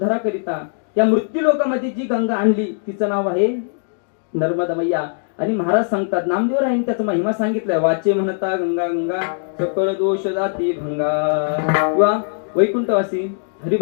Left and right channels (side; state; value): right; silent; digital silence